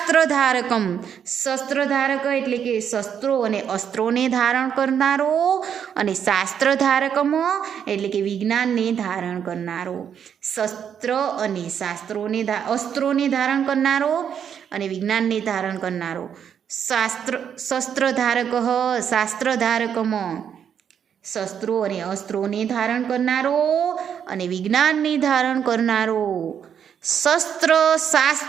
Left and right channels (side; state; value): left; quieter; 8.2 dB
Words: શસ્ત્રધારક એટલે કે શસ્ત્રો અને અસ્ત્રોને ધારણ કરનારો, અને શાસ્ત્રધારકમ એટલે કે વિજ્ઞાનને ધારણ કરનારો. શસ્ત્ર અને અસ્ત્રોને ધારણ કરનારો અને વિજ્ઞાનને ધારણ કરનારો. શસ્ત્રધારક શાસ્ત્રધારકમ, શસ્ત્રો અને અસ્ત્રોને ધારણ કરનારો અને વિજ્ઞાનને ધારણ કરનારો.